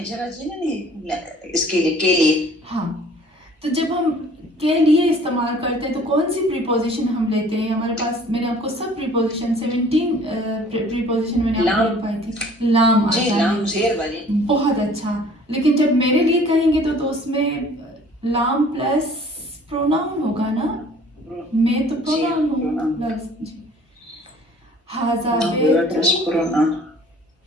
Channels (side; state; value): both; normal; correlation 0.52